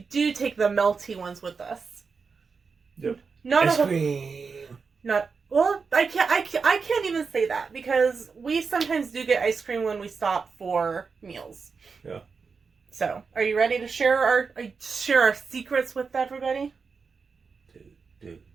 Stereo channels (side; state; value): left; quieter; 5.1 dB